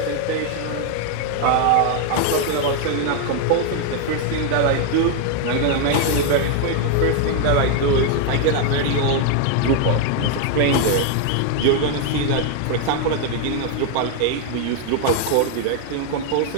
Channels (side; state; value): both; different; correlation 0.00